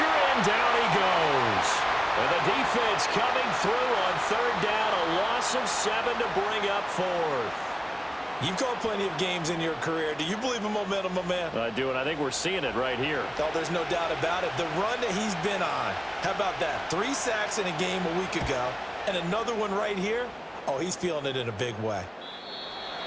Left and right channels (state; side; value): identical; both; correlation 1.00